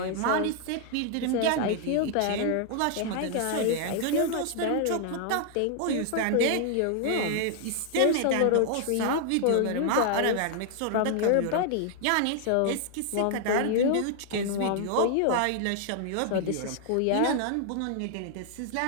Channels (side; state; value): both; different; correlation 0.00